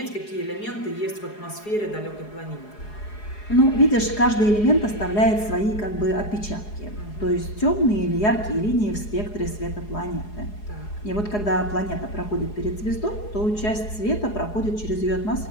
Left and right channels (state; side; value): late; right; 4.8 ms